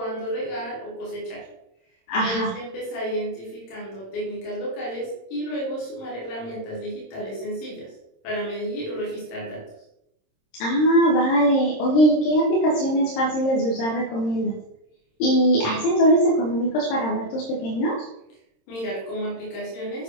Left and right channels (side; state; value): right; late; 26 ms